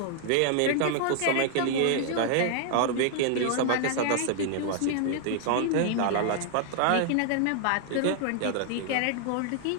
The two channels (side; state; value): both; different; correlation 0.00